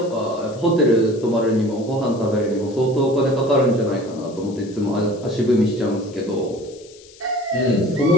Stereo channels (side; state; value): left; noise; hiss, 23 dB below the sound